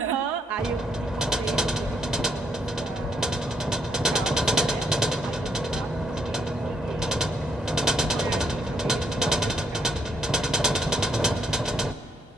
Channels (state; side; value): normal; both; correlation 0.73